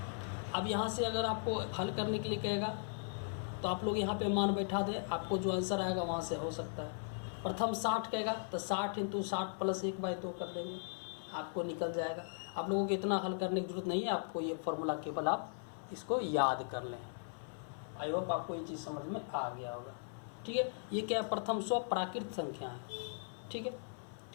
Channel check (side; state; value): right; silent; 52 dB below the other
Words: अब यहाँ से अगर आपको हल करने के लिए कहेगा तो आप लोग यहाँ पे मान बैठा दे, आपको जो आंसर आएगा वहाँ से हो सकता है। प्रथम 60 कहेगा तो 60 इंटू 60 प्लस 1/2 कर देंगे, आपको निकल जाएगा। आप लोगों को इतना हल करने की जरूरत नहीं है, आपको ये फॉर्मूला केवल आप इसको याद कर लें। आई होप आपको ये चीज़ समझ में आ गया होगा, ठीक है। ये क्या है, प्रथम 100 प्राकृत संख्या है, ठीक है।